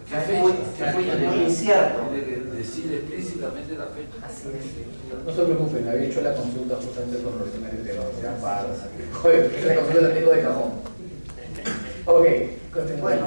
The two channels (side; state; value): both; inverted; correlation -1.00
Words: Es muy incierto. Decir explícitamente la fecha. Así es. No se preocupen, había hecho la consulta justamente con los temas de tema. Joder, la consulta la tengo de cajón. Ok, continúa.